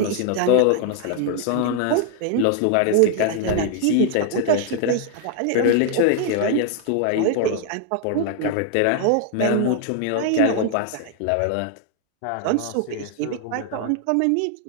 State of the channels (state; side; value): different; both; correlation 0.00